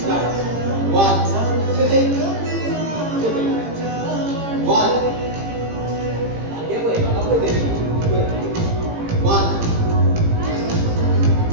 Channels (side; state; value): left; late; 18 ms